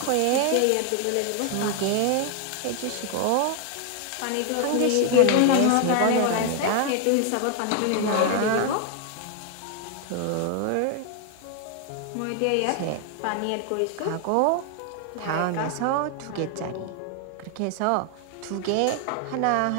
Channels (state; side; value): different; both; correlation 0.00